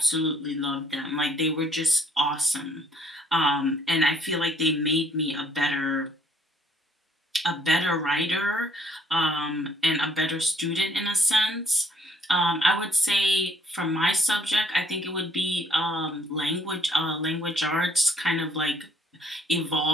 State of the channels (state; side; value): normal; both; correlation 0.65